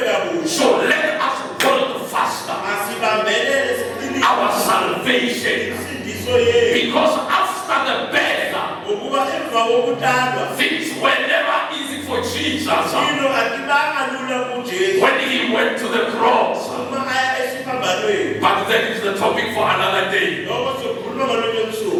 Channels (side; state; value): both; identical; correlation 1.00